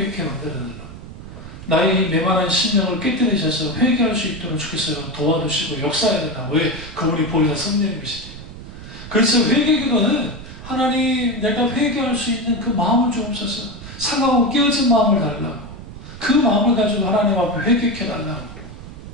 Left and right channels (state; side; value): noise; right; rumble, 13 dB below the sound